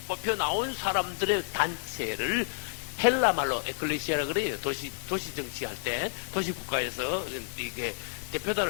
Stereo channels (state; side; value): silent; right; 58 dB below the other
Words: 뽑혀 나온 사람들의 단체를 헬라 말로 에클레시아라 그래요. 도시 정치할 때, 도시 국가에서 이게